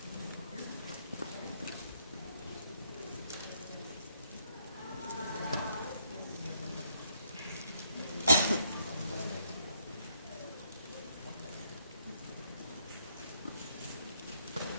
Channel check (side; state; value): both; inverted; correlation -0.72